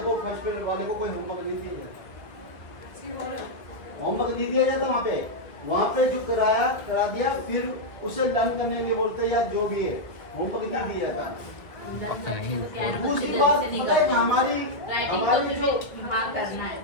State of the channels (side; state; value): right; late; 1.6 ms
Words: फर्स्ट ग्रेड वाले को कोई होमवर्क नहीं दिया जाता। होमवर्क नहीं दिया जाता वहाँ पे जो करा दिया, फिर उसे लर्न करने के लिए बोलते हैं या जो भी है, होमवर्क नहीं दिया जाता। दूसरी बात पता है कि हमारी जो हाँ करना है,